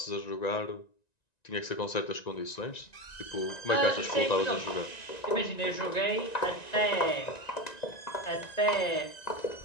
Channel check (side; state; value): right; late; 1.9 ms